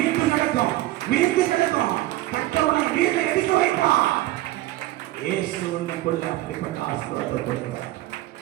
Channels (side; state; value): left; quieter; 16.6 dB